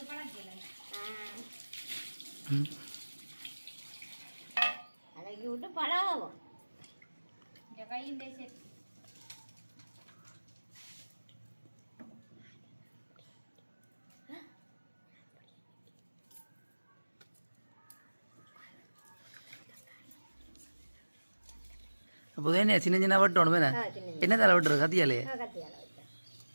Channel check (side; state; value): both; inverted; correlation -1.00